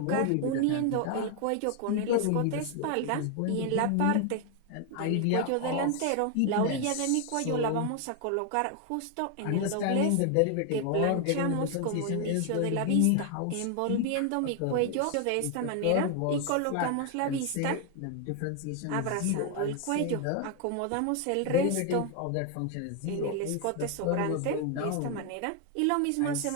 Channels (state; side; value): different; both; correlation 0.01